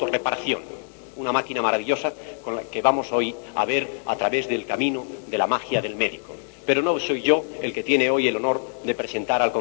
Una máquina maravillosa con la que vamos hoy a ver a través del camino de la magia del médico. Pero no soy yo el que tiene hoy el honor de presentar al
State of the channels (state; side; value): silent; right; 62 dB below the other